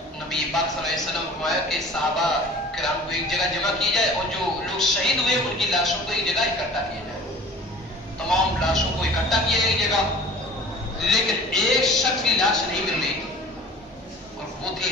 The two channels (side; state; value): both; normal; correlation 0.44